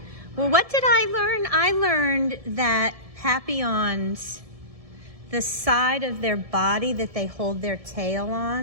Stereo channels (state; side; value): late; left; 1.7 ms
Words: Well, what did I learn? I learned that Papillons, the side of their body that they hold their tail